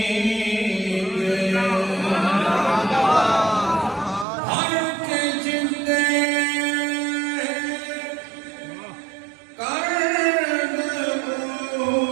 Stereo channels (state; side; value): drops out; left; at 4.2 s